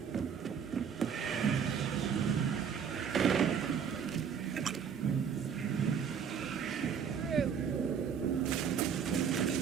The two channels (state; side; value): quieter; left; 7.3 dB